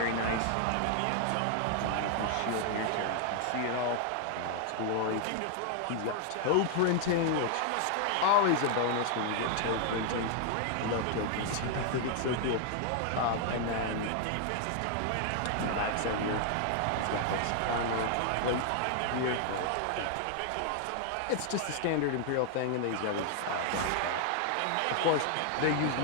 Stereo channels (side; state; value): both; different; correlation 0.00